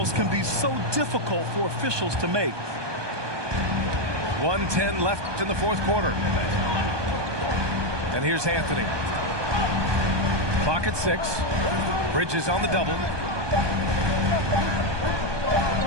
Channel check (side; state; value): left; late; 1.2 ms